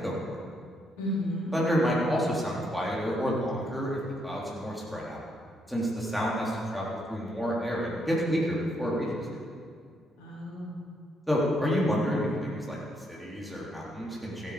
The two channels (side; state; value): both; normal; correlation 0.75